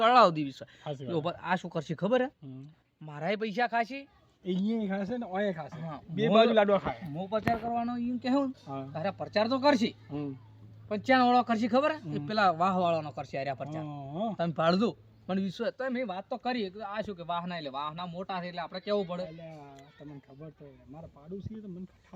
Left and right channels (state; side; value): identical; both; correlation 1.00